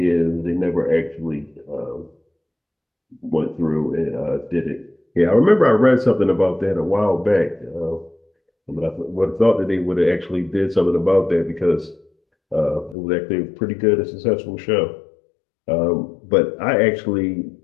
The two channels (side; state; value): right; drops out; at 13.0 s